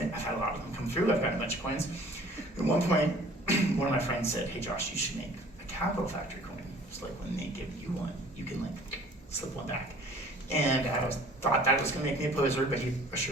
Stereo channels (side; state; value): both; normal; correlation 0.51